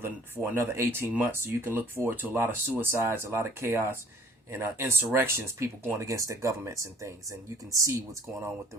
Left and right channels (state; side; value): normal; both; correlation 0.54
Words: another 18 months. So you can look forward to a lot of suicides, a lot of chaos, and insurrections, people going against their governments and things. And you can see what's going on with